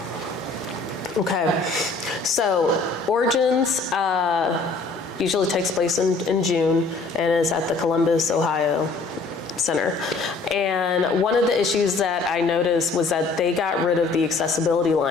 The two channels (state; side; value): quieter; right; 3.8 dB